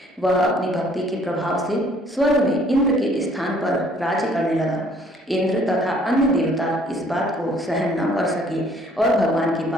वह अपनी भक्ति के प्रभाव से स्वर्ग में इंद्र के स्थान पर राज्य करने लगा। इंद्र तथा अन्य देवता इस बात को सहन न कर सके और भगवान के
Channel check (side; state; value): both; normal; correlation 0.60